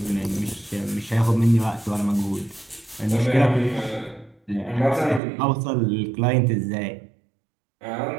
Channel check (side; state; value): left; drops out; at 5.2 s